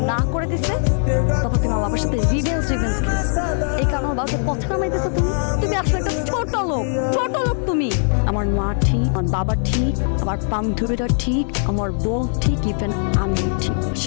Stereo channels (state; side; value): silent; right; 59 dB below the other